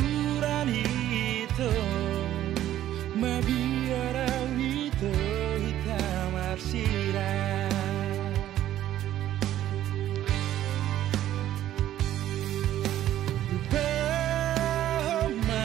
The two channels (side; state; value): left; quieter; 12.6 dB